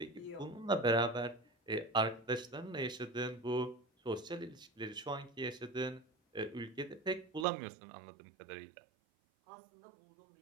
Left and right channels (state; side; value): drops out; left; at 7.5 s